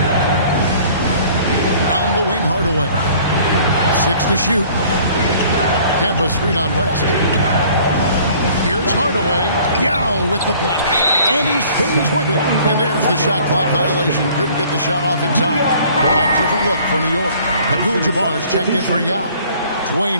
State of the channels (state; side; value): inverted; both; correlation -0.53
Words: On the wing, Hardaway. 6 to shoot. Kemp a screen on West. Here's Hardaway. Yao with the block. And he stays with it. And there's the shot clock violation. Couldn't get the shot off in time. A different look for New York. Abdul-Jabbar's checked in for Yao.